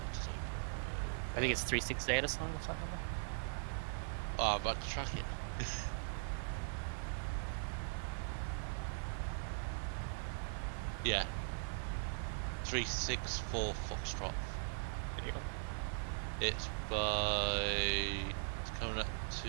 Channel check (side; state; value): left; silent; 51 dB below the other